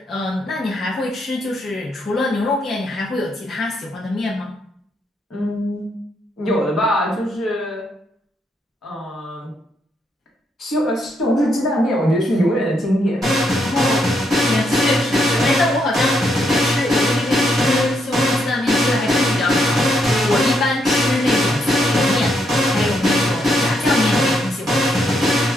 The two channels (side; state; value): both; normal; correlation 0.77